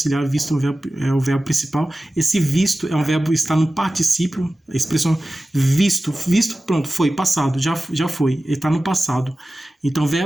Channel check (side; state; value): both; normal; correlation 0.95